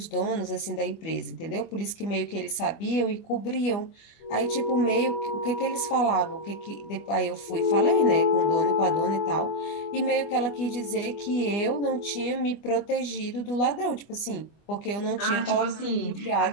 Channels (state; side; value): late; right; 25 ms